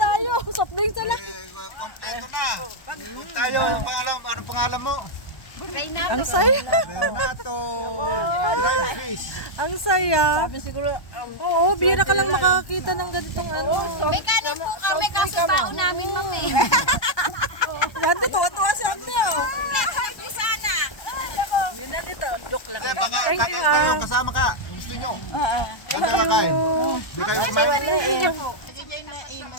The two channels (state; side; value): late; right; 1.2 ms